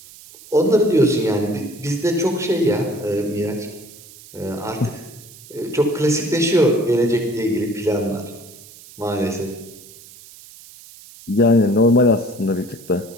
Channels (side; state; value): right; noise; hiss, 20 dB below the sound